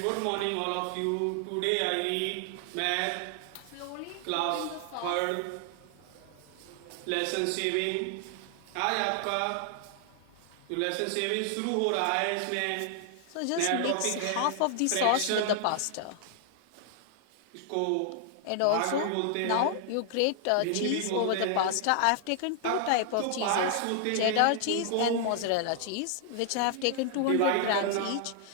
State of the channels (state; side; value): different; both; correlation 0.00